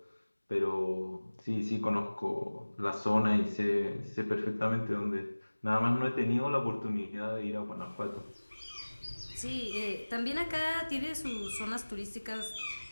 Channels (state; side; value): inverted; both; correlation -1.00